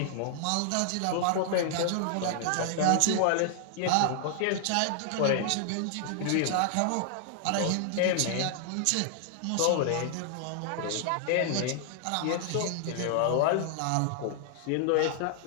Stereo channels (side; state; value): both; different; correlation 0.00